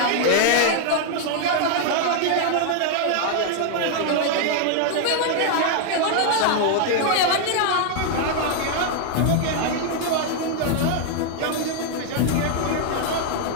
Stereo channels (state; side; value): different; both; correlation 0.00